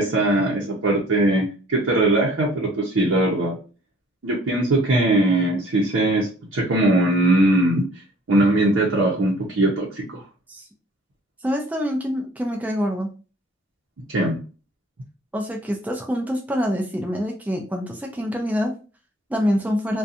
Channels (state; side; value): normal; both; correlation 0.54